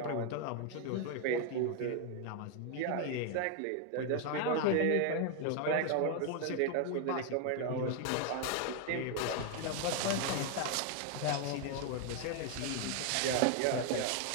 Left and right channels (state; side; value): different; both; correlation 0.01